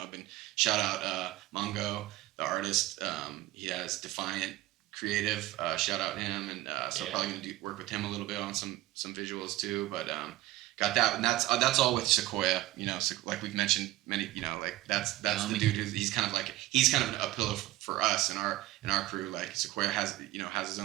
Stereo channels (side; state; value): left; quieter; 16.3 dB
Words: I've been shout out Mongo, the artist. He has Defiant Creative. Shout out him, and so I'm probably going to work with him a little bit on some visuals too. But got that, and that's all with Sequoia. You know, like we've mentioned many. You know, like that's the dude who's he's kind of a pillar for us and our crew, like Sequoia has his